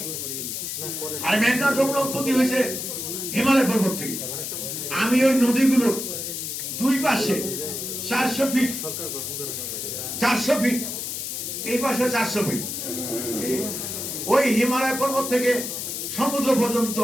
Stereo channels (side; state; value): left; noise; hiss, 5 dB below the sound